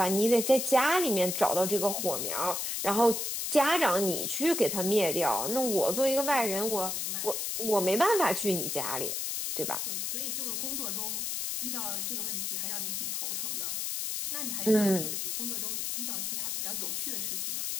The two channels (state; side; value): noise; left; hiss, 2 dB below the sound